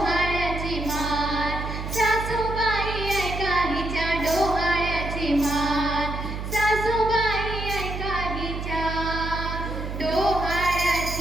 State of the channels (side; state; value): right; noise; hum, 6 dB below the sound